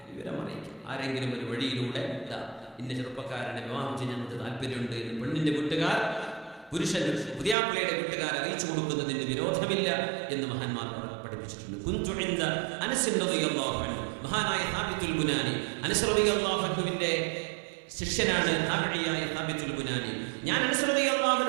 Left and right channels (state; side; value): drops out; left; at 7.6 s